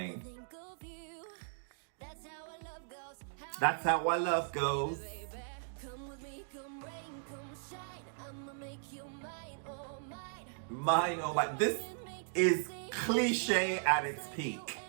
That's how our love goes. Mine, oh my. This is cliche at its peak.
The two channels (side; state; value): left; silent; digital silence